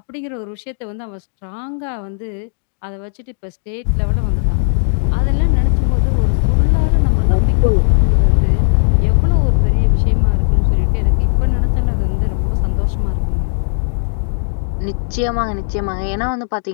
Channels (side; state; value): right; silent; digital silence